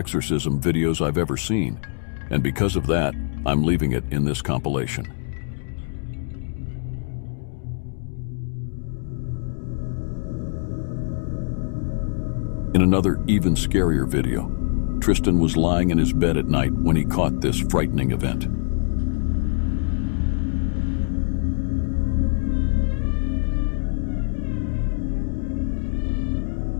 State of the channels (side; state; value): right; silent; 63 dB below the other